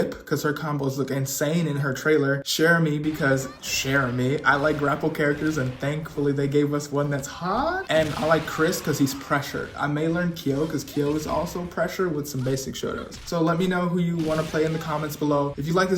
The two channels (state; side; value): identical; both; correlation 1.00